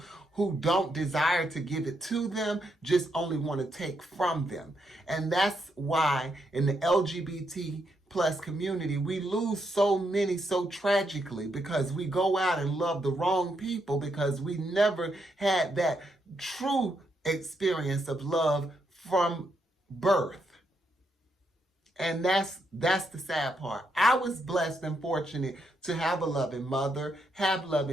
who don't desire to give it to them, just only want to take from them. And that's why in the LGBT plus community, we lose so many so tragically, because we go out and love the wrong people because we never had that true experience of love from birth. And that's the sad part. I was blessed and fortunate to have a loving mother, have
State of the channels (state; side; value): normal; both; correlation 0.79